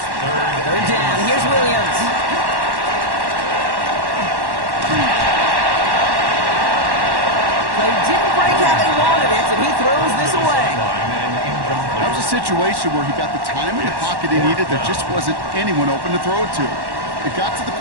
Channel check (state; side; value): late; left; 1.1 ms